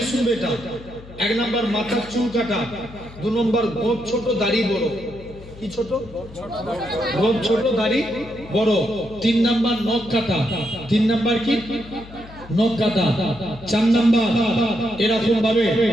শুনবে এটা এক নাম্বার মাথার চুল কাটা দুই নম্বর গোঁফ ছোট দাড়ি বড় কি ছোট গোঁফ ছোট দাড়ি বড় তিন নাম্বার নখ কাটা তিন নাম্বার কি নখ কাটা চার নাম্বার এরকম ভাবে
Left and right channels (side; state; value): left; noise; hum, 18 dB below the sound